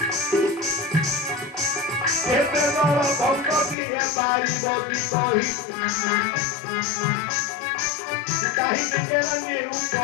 केते बड़ भक्ति है बारी बगी कही कहीं केरानी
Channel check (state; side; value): drops out; right; at 3.8 s